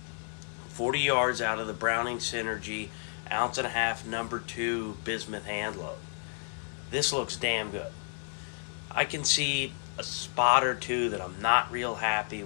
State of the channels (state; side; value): silent; right; 57 dB below the other